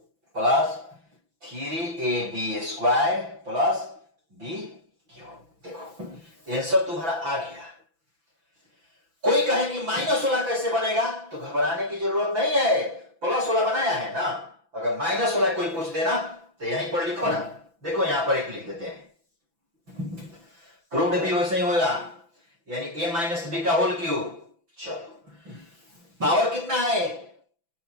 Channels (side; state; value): left; late; 6.0 ms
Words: plus 3ab square plus b cube. देखो आंसर तुम्हारा आ गया। कोई कहे कि माइनस वाला कैसे बनेगा तो घबराने की जरूरत नहीं है, प्लस वाला बनाया है ना, अगर माइनस वाला कोई पूछ देना तो यहीं पर लिखो ना, देखो यहां पर एक लिख देते हैं, प्रूव्ड भी वैसे ही होगा, यानी a माइनस बी का होल क्यूब। चलो पावर कितना है